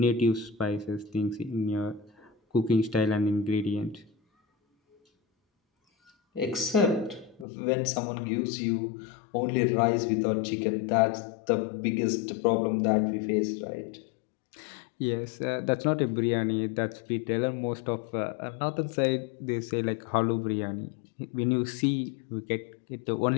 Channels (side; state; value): right; drops out; at 7.5 s